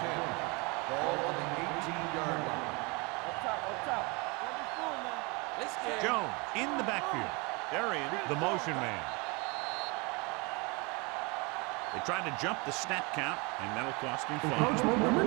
10. Ball on the 18-yard line. Up top. Let me through, man. Let's get Jones in the backfield. They're in the motion man. They tried to jump the snap count, and that'll cost him 5. Encroachment number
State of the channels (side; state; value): left; quieter; 28.6 dB